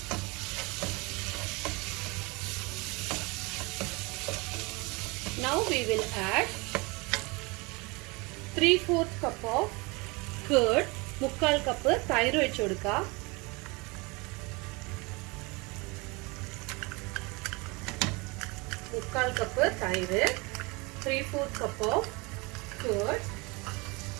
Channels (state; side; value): quieter; left; 26.6 dB